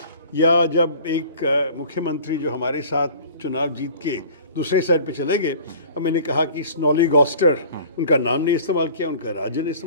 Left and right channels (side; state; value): both; inverted; correlation -0.46